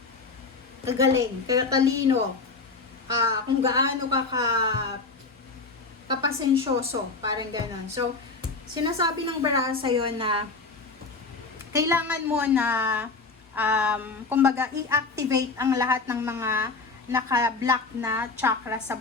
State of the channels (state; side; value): quieter; right; 4.0 dB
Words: kagaling, katalino, kung gaano ka kapasensyoso, parang gano'n. So, sinasabi ng baraso yon na kailangan mo na kumbaga i-activate ang lahat ng mga naka-block na chakra sa